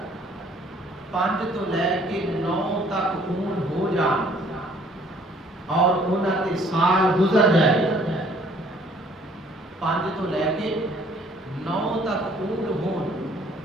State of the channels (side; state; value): both; normal; correlation 0.59